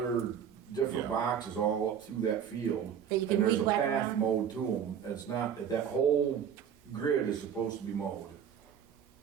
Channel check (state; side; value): quieter; left; 8.4 dB